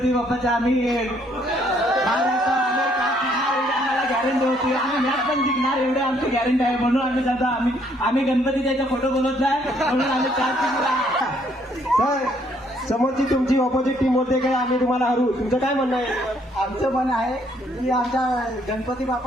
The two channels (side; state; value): both; normal; correlation 0.67